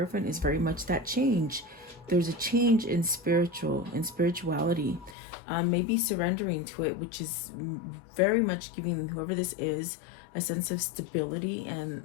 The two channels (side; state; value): right; drops out; at 5.2 s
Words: is very much that change. There's a change in spirituality, maybe surrendering to it, which is very much giving whoever this is a sense of stability and